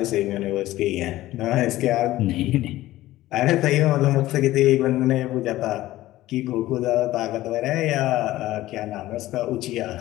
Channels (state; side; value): quieter; right; 16.0 dB